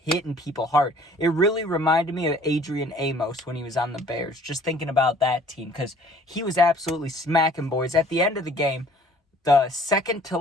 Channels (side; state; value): both; normal; correlation 0.54